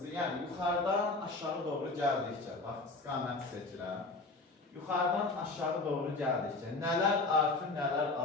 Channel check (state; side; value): quieter; right; 3.4 dB